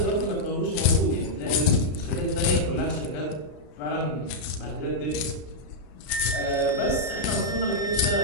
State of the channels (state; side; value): late; right; 32 ms